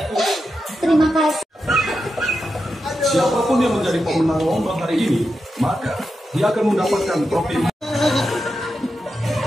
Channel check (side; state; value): both; normal; correlation 0.88